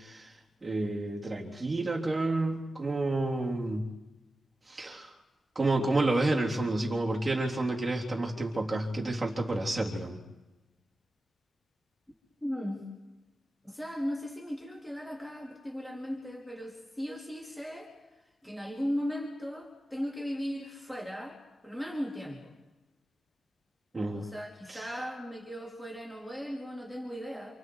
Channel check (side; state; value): both; normal; correlation 0.93